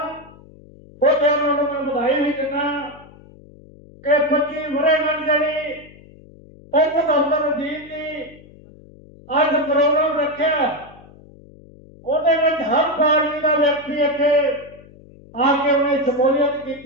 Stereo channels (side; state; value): left; noise; hum, 23 dB below the sound